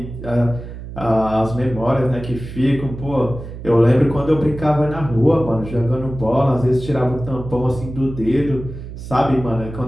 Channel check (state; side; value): noise; right; hum, 11 dB below the sound